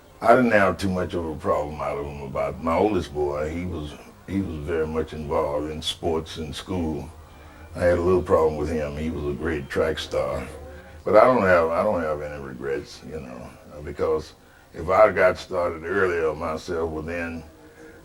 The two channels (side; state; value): both; identical; correlation 1.00